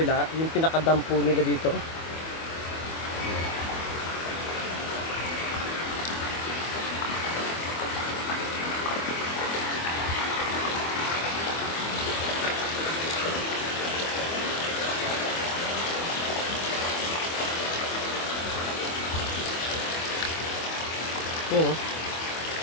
yung pinaka-dam po nila dito. Yun oh.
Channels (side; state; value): right; late; 24 ms